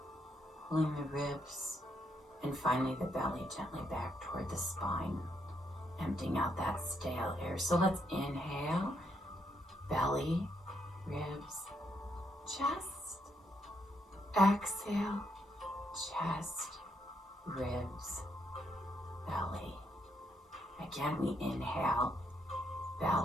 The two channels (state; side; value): normal; both; correlation 0.76